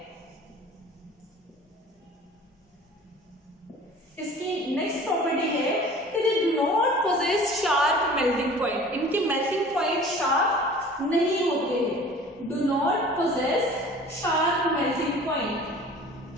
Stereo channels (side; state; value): both; normal; correlation 0.45